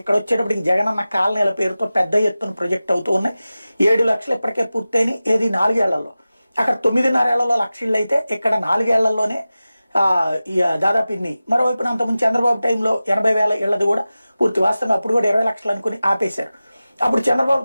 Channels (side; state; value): both; inverted; correlation -0.96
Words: ఇక్కడ వచ్చేటప్పటికి జగనన్న కాలనీల పేరుతో పెద్ద ఎత్తున ప్రొజెక్ట్ అవుతూ ఉన్నాయి. 7 లక్షలు ఇప్పటికే పూర్తయినాయి, ఏది 4 ఏళ్లలో. అక్కడ 9.5 ఏళ్లలో 1,00,000 ఇళ్ళు అయితే ఇక్కడ 4 ఏళ్లలోనే దాదాపు ఇన్ని. మరోవైపున అంతకుముందు చంద్రబాబు టైంలో 80,000 ఇళ్ళది కూడా పూర్తి. వాస్తవంగా అప్పుడు కూడా 20 లక్షలు అనుకుని ఆపేశారు. అప్పుడు